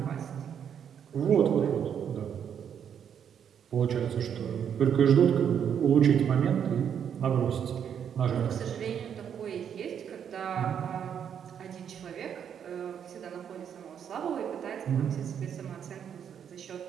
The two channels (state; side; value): quieter; left; 8.4 dB